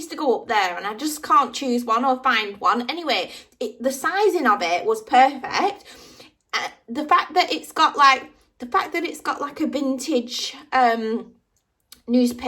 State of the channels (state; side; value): identical; both; correlation 1.00